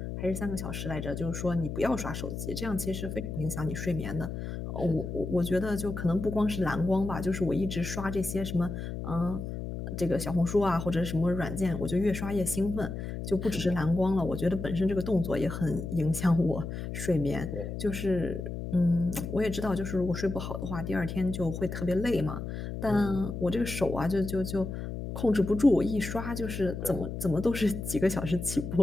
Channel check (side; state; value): left; noise; hum, 6 dB below the sound